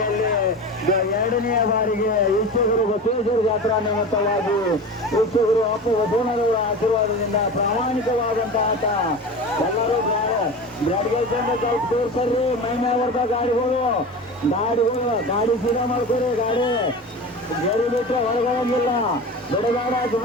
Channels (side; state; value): both; normal; correlation 0.30